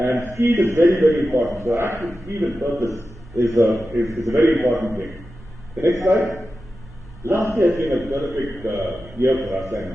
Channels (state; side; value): normal; both; correlation 0.92